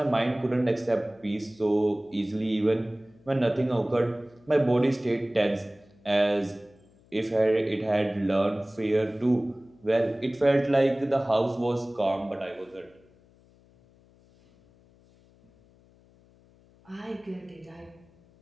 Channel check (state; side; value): noise; left; hum, 29 dB below the sound